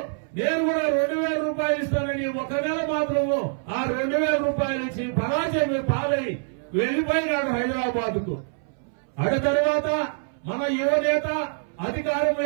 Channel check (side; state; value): left; silent; 62 dB below the other